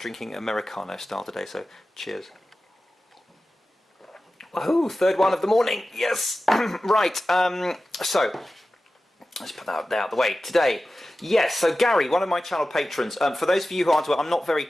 Americano style today. So cheers. Woohoo! Third one of the morning. Yes. Right. So let's put that out the way today. Yes, so Gary, one of my channel patrons, for those of you who aren't aware, I'm not very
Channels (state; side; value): normal; both; correlation 0.94